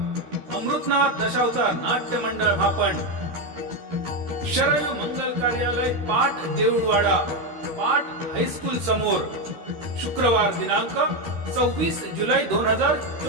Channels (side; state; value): left; late; 12 ms